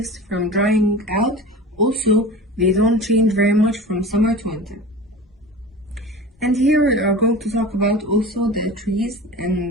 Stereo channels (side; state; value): both; normal; correlation 0.34